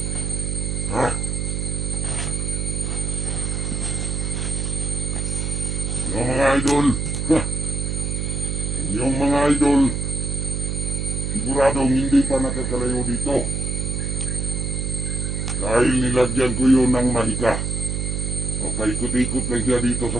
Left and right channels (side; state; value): right; noise; hum, 1 dB below the sound